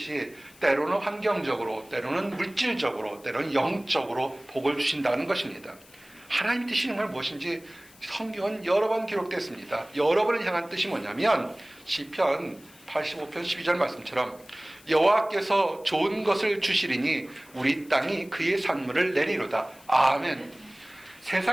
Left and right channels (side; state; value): left; noise; hiss, 25 dB below the sound